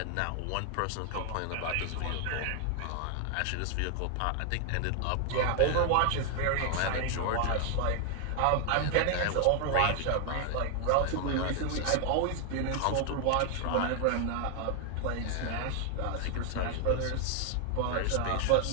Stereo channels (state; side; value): different; both; correlation 0.00